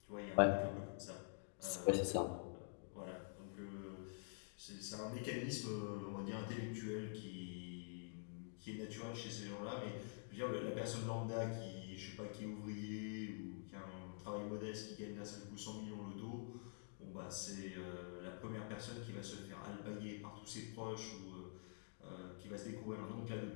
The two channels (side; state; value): right; silent; digital silence